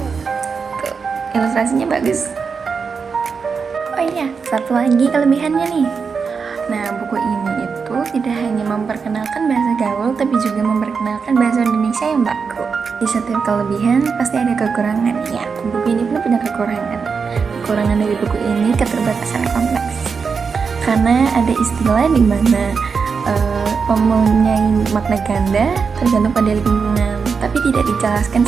Tuh, ilustrasinya bagus. Oh iya, satu lagi kelebihannya nih. Nah, buku ini itu tidak hanya memperkenalkan bahasa gaul, tapi juga memperkenalkan bahasa Indonesia yang baku. Di setiap kelebihan pasti ada kekurangan. Ya, buku ini pun punya kekurangan. Kekurangan dari buku ini keterbatasan konteks. Karena ada istilah di mana mempunyai makna ganda tergantung pada lingkungan, tapi tidak dijelaskan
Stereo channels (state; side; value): quieter; left; 5.5 dB